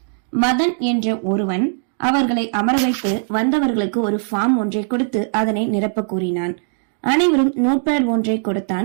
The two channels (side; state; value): left; silent; 66 dB below the other